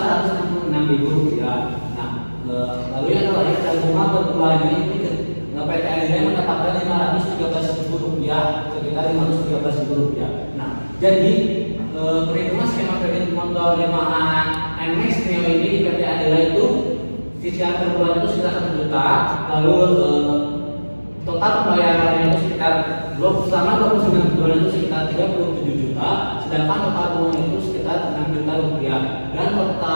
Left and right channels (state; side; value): inverted; both; correlation -1.00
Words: rupiah. Nah, lalu yang terakhir total bunga per bulannya itu PT Adira mendapatkan 513.000 rupiah, sekitar 513.000 rupiah. Nah, jadi perhitungan skema kredit motor Yamaha NMAX Neo ini di PT Adira itu cicilan per bulan itu sekitar 1 juta, lalu total pembayarannya itu sekitar selama 29 bulan itu sekitar 37 juta, sedangkan total bunga itu sekitar 6 juta rupiah dan